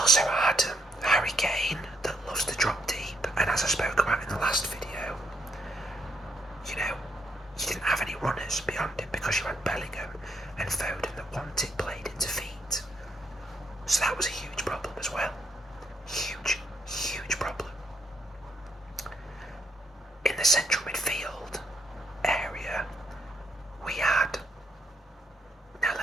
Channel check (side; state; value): both; normal; correlation 0.75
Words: had Harry Kane that loves to drop deep, and as I spoke about in the last video, you didn't have any runners beyond him because you had Bellingham and Foden that wanted played into feet. So that was a huge problem as well. Huge problem. In the central midfield area, we had, now